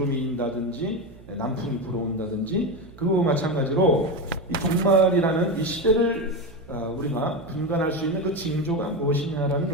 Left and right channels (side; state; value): right; noise; hum, 21 dB below the sound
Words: 인다든지 남풍이 불어온다든지 그거와 마찬가지로 이 종말이라는 이 시대를 우리가 분간할 수 있는 그 징조가 무엇이냐라는